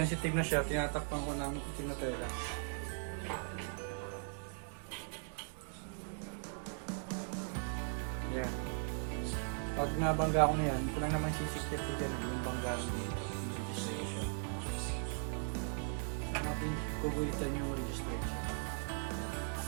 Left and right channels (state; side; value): silent; left; 52 dB below the other